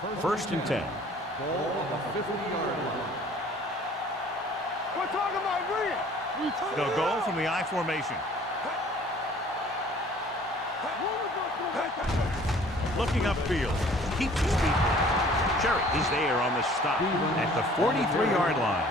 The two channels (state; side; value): normal; both; correlation 0.52